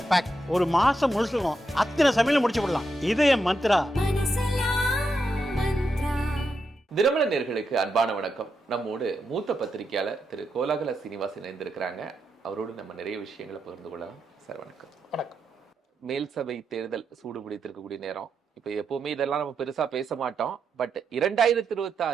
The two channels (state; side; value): normal; both; correlation 0.84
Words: பேக் ஒரு மாசம் முழுசுக்கும் அத்தனை சமையல் முடிச்சு விடலாம். இதய மந்த்ரா. தினமலர் நேயர்களுக்கு அன்பான வணக்கம். நம்மோடு மூத்த பத்திரிகையாளர் திரு கோலாகல சீனிவாஸ் இணைந்திருக்கிறாங்க. அவரோடு நம்ம நிறைய விஷயங்களை பகிர்ந்து கொள்ளலாம். சார் வணக்கம். வணக்கம். மேல் சபை தேர்தல் சூடு பிடித்திருக்கக்கூடிய நேரம். இப்ப எப்பவுமே இதெல்லாம் நம்ம பெருசா பேச மாட்டோம். பட்